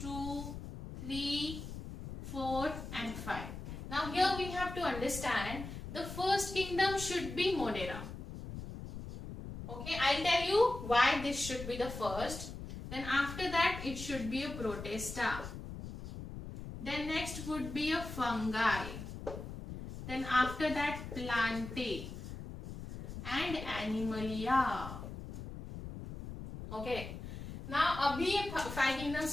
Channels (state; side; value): noise; left; rumble, 9 dB below the sound